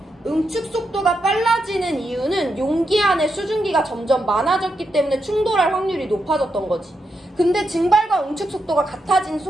응축 속도가 빨라지는 이유는 용기 안에 수증기가 점점 많아졌기 때문에 충돌할 확률이 높아졌던 거지. 근데 증발과 응축 속도가 같아진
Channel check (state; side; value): normal; both; correlation 0.84